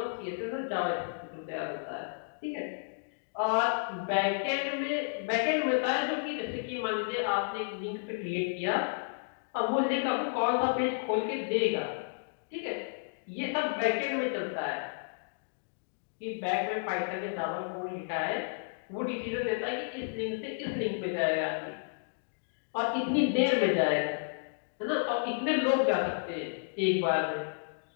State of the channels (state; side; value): silent; right; digital silence